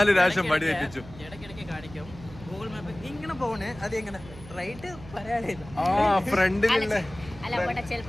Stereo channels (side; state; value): right; noise; hum, 17 dB below the sound